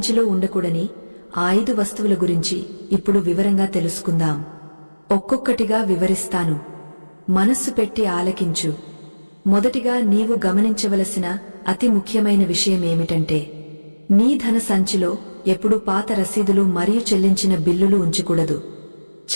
ఉండకూడని 5 వస్తువుల గురించి ఇప్పుడు వివరంగా తెలుసుకుందాం. ఒక్కొక్కటిగా వివరిస్తాను. మనస్సు పెట్టి ఆలకించు. మొదటిగా నీవు గమనించవలసిన అతి ముఖ్యమైన విషయమేమిటంటే నీ ధన సంచిలో ఎప్పుడూ పాత రసీదులు మరియు చెల్లించిన బిల్లులు ఉంచకూడదు.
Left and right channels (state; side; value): inverted; both; correlation -1.00